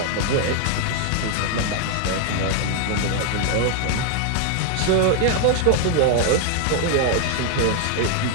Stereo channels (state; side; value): different; both; correlation 0.00